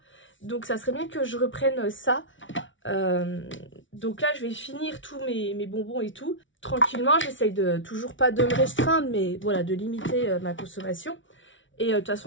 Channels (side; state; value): right; late; 0.56 ms